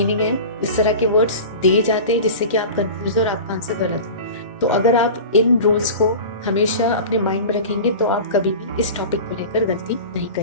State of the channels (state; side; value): inverted; both; correlation -0.34